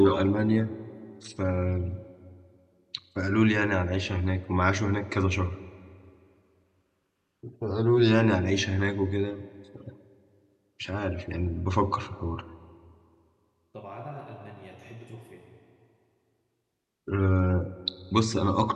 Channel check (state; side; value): identical; both; correlation 1.00